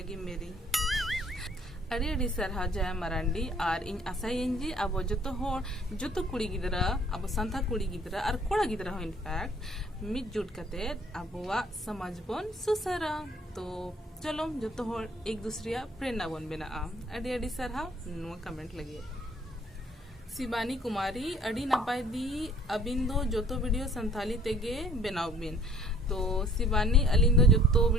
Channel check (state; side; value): normal; both; correlation 0.57